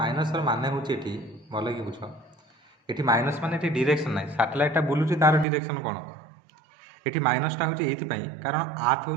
मान हूँ ये भल कि बुझ ये माइनस मान ये डिरेक्शन ना सैटेलाइटा बुलूची तार डिरेक्शन कौन ये माइनसटा हूँ ये कारण आर्थ हूँ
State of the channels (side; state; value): left; drops out; at 5.5 s